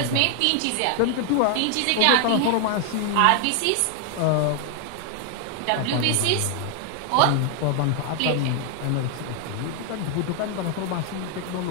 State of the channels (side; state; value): both; different; correlation 0.00